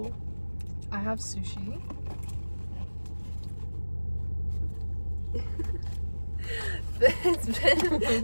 I have sushi.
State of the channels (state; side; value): inverted; both; correlation -1.00